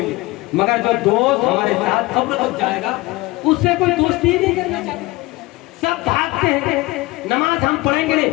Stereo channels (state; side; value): quieter; right; 21.0 dB